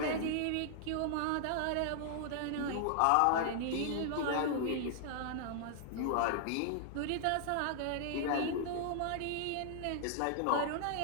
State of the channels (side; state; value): both; different; correlation -0.01